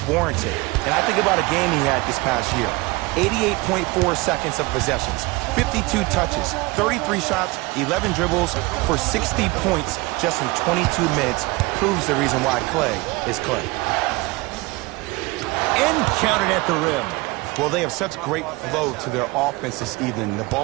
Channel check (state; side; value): quieter; left; 23.3 dB